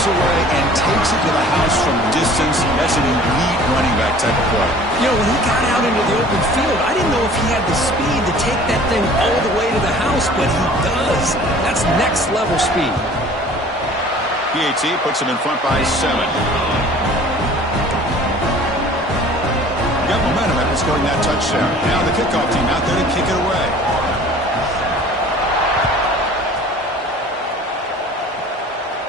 away and takes it to the house from distance. That's an elite running back type of play. You know, when he got out into the open field, I didn't know if he had the speed to take that thing all the way to the house, but he does. That's next level speed. PAT puts him in front by 7. Got momentum after scoring that touchdown. Now the kickoff team out there to kick it away.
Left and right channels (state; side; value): normal; both; correlation 0.48